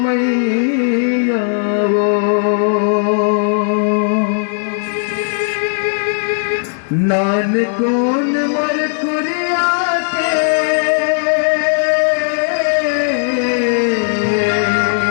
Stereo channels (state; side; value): silent; right; digital silence